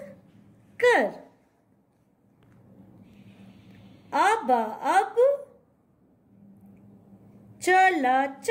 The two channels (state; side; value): identical; both; correlation 1.00